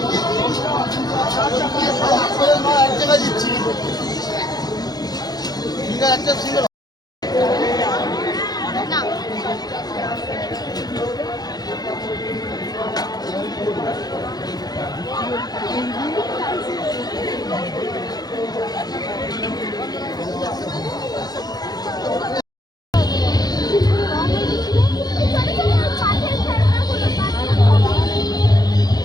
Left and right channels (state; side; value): late; right; 0.19 ms